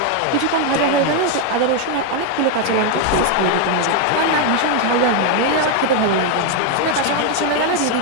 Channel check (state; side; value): different; both; correlation 0.01